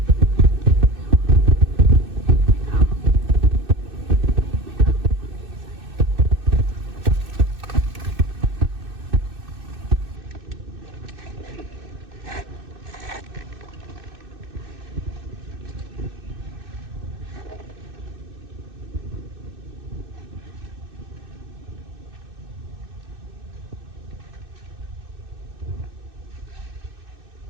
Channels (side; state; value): left; late; 2.6 ms